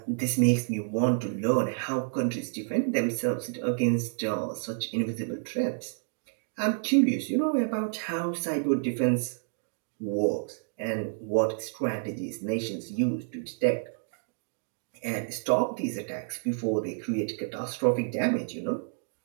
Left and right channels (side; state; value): left; silent; digital silence